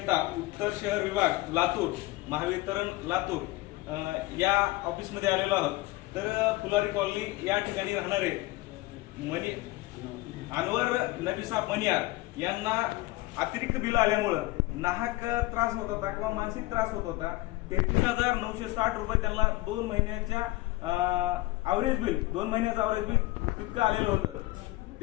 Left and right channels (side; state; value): right; quieter; 19.8 dB